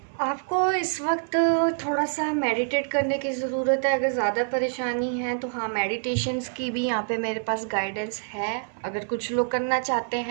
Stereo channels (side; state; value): left; silent; 61 dB below the other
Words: आपको इस वक्त थोड़ा सा मेडिटेट करने की ज़रूरत है। अगर ज़्यादा परेशानी है तो हाँ, मेडिटेशंस की भी यहाँ पे मेरे पास गाइडेंस है। अगर कुछ लोग करना चाहते